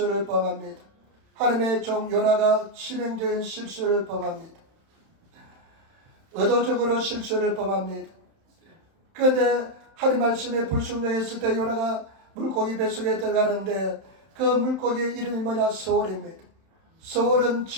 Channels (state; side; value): late; left; 31 ms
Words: 범합니다. 하나님의 종 요나가 치명적인 실수를 범합니다. 의도적으로 실수를 범합니다. 그런데 하나님 말씀에 불순종했을 때 요나가 물고기 뱃속에 들어가는데 그 물고기의 이름이 뭐냐? 서울입니다. 서울은